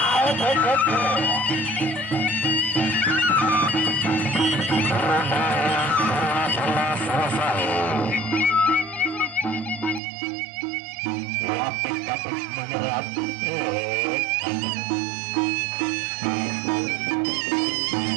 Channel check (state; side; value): drops out; left; at 10.0 s